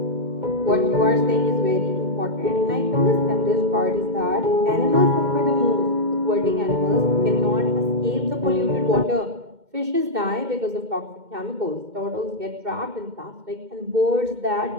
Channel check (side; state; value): left; late; 2.1 ms